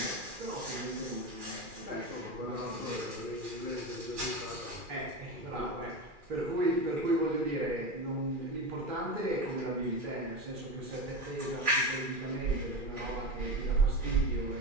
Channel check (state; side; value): late; left; 2.4 ms